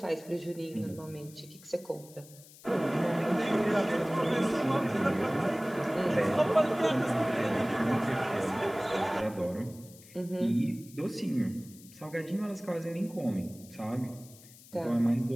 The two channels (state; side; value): noise; left; hiss, 21 dB below the sound